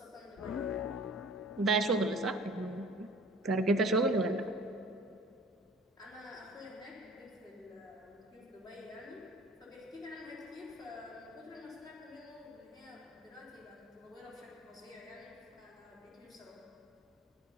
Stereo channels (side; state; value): both; normal; correlation 0.47